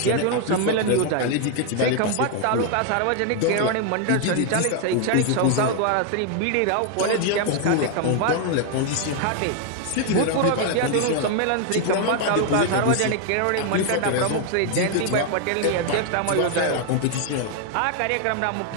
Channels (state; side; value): different; both; correlation 0.00